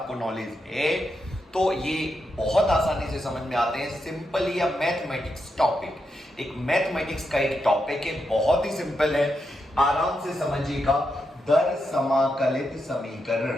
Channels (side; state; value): both; normal; correlation 0.84